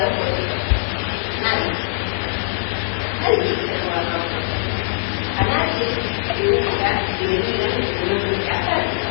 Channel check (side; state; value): right; silent; digital silence